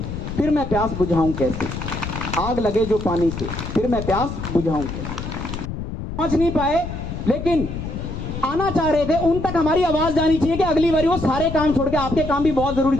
फिर मैं प्यास बुझाऊं कैसे। आग लगे जो पानी से फिर मैं प्यास बुझाऊं कैसे। पहुंच नहीं पाए लेकिन आना चाह रहे थे, उन तक हमारी आवाज जानी चाहिए कि अगली बारी वो सारे काम छोड़ के, आपके काम भी बहुत जरूरी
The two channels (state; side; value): noise; left; rumble, 7 dB below the sound